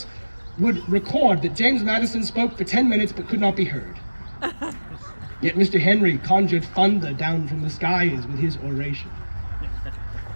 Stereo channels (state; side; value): inverted; both; correlation -1.00